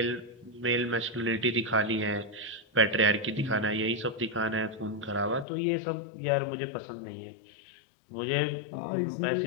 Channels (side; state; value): right; drops out; at 5.5 s